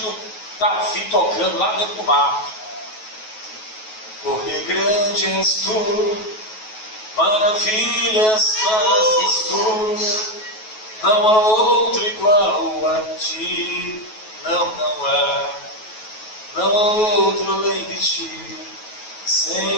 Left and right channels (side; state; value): right; late; 9.3 ms